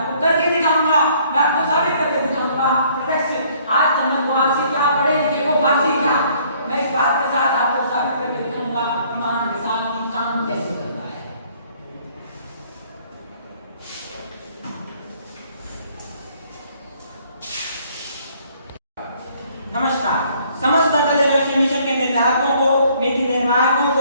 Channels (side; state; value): both; inverted; correlation -0.61